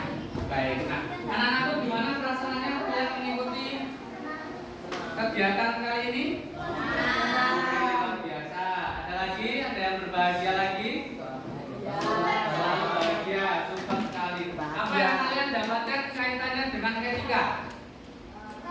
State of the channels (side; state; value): both; identical; correlation 1.00